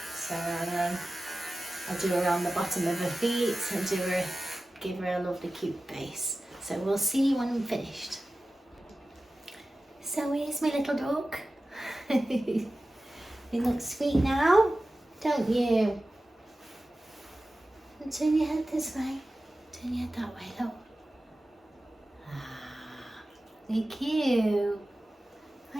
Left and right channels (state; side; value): normal; both; correlation 0.95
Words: So then I'll do her on the bottom of her feet and give her a lovely cute base. So we'll see when I'm finished. So here's my little dog. You look sweet now, don't you? And turn your head this way. Turn your head that way, look. Ah, you're cute. Are